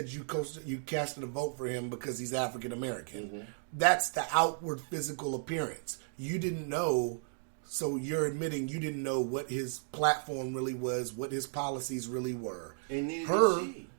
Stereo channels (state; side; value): silent; left; digital silence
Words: you casted a vote for him because he's African American. Mm-hmm. That's the outward physical appearance. You didn't know, so you're admitting you didn't know what his platform really was, what his policies really were. And neither did